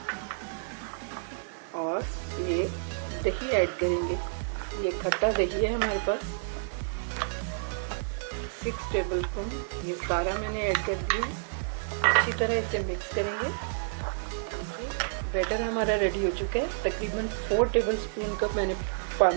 और ये दही ऐड करेंगे। ये खट्टा दही है हमारे पास, 6 टेबल स्पून। ये सारा मैंने ऐड कर दिया। अच्छी तरह इसे मिक्स करेंगे। बैटर हमारा रेडी हो चुका है। तकरीबन 4 टेबल स्पून का मैंने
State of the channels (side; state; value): left; silent; digital silence